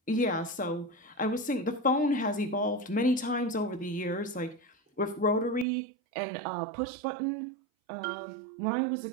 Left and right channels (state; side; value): drops out; left; at 5.7 s